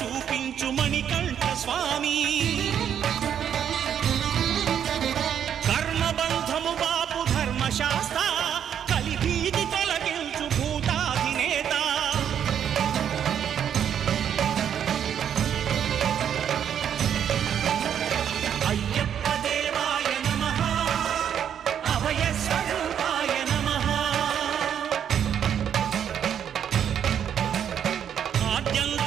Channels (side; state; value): left; quieter; 8.9 dB